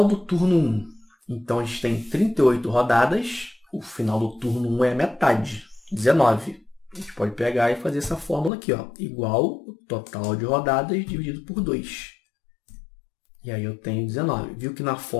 do turno 1. Então, a gente tem 38 rodadas. O final do turno 1 é a metade, 19. A gente pode pegar e fazer essa fórmula aqui, ó, igual o total de rodadas dividido por 2. E aí eu tenho 19. Viu que na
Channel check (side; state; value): right; drops out; at 8.5 s